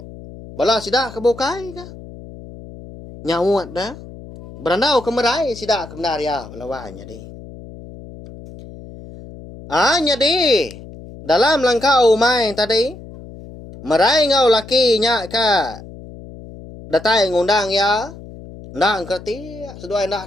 Bala sidak kebukai ka. Nyawat dah. Berandau kemerai sidak kebenar ya. Balawannya di. Nyadi. Dalam langkau main tadi. Merai ngau laki nya ka. Datai ngundang ya. Ndak kerti. Seduai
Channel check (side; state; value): left; noise; hum, 16 dB below the sound